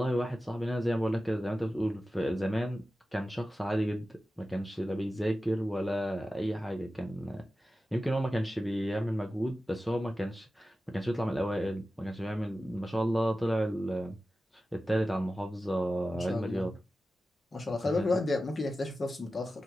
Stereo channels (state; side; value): normal; both; correlation 0.94